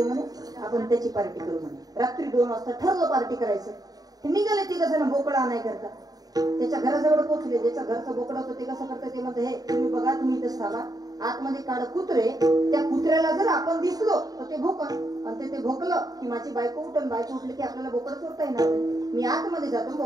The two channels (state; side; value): late; left; 0.18 ms